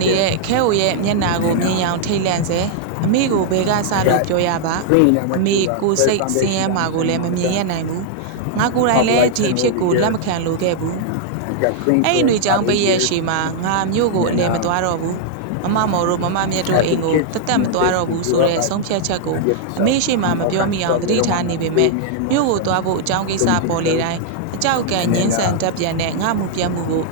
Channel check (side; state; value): both; different; correlation -0.01